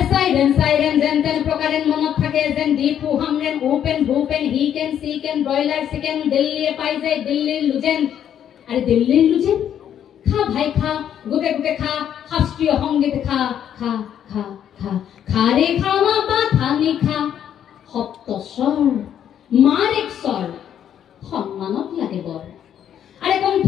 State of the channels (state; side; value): quieter; right; 9.6 dB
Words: সাইরেন সাইরেন যেন তেন প্রকারেন মনত থাকে যেন দীপু হামরেন ওপেন ভূপেন হি কেন সি কেন ব্রয়লার চিকেন দিল্লিয়ে পাই যায় দিল্লির লুজেন। আরে দিল্লির লুজেন খা ভাই খা গুটে গুটে খা শাস্ত্রীয় সংগীত খা খা খা খা খা রে খা মা পা থানি খা সপ্তস্বর মার এক স্বর সম্মানত লাগে বৰ। আরে